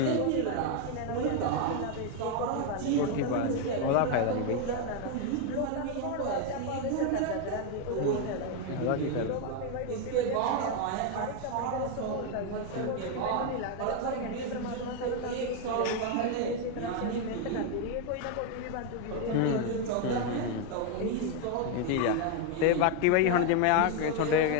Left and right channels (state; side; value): different; both; correlation 0.01